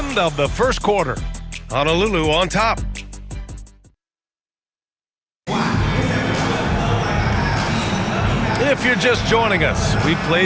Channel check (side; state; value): both; identical; correlation 1.00